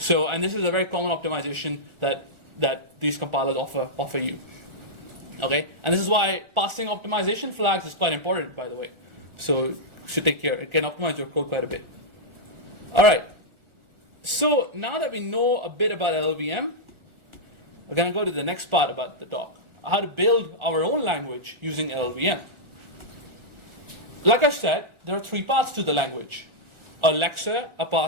and this is a very common optimization that these compilers offer you. Okay, and this is why passing optimization flags is quite important, by the way. So you should take care. It can optimize your code quite a bit. All right. So now that we know a bit about LLVM, we're going to go to the next part about the talk. How to build our own language using LLVM. Like I said, there are three parts to the language. A lexer, a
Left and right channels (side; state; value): left; late; 1.4 ms